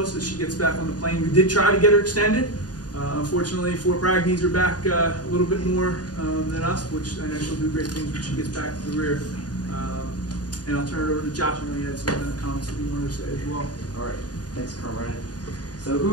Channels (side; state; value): right; late; 0.69 ms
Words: us as she gets back on the plane. We did try to get her extended. Unfortunately, Fort Bragg needs her back a little bit more than us, which I know she'll do great things when she gets back to the rear. And I'll turn it over to Josh. I know he had some comments that he wanted to say as well. All right. Thanks, Colonel. So